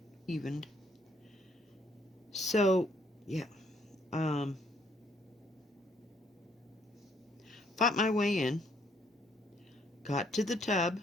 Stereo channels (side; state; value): both; normal; correlation 0.67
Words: evened. So, yeah. Fought my way in. Got to the tub.